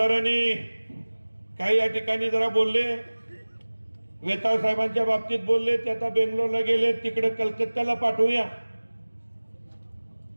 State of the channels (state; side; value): inverted; both; correlation -1.00